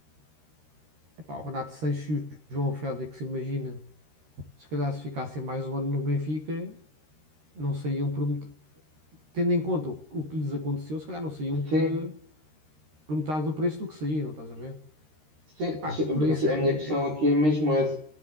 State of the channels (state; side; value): late; left; 13 ms